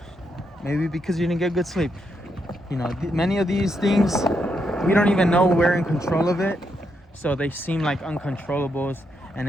maybe because you didn't get good sleep. Many of these things, we don't even know we're in control of it, so they seem like uncontrollables, and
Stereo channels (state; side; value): normal; both; correlation 0.80